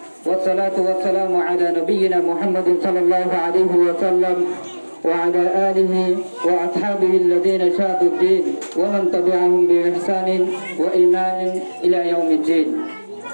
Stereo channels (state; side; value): inverted; both; correlation -1.00